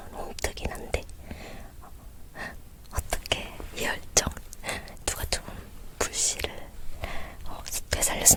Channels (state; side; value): identical; both; correlation 1.00